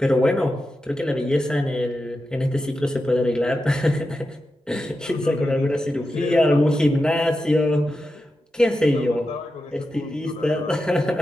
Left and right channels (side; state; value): both; normal; correlation 0.90